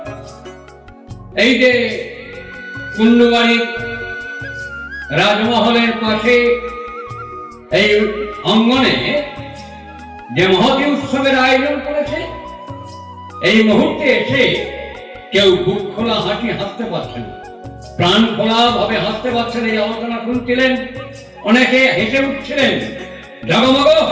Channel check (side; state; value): both; identical; correlation 1.00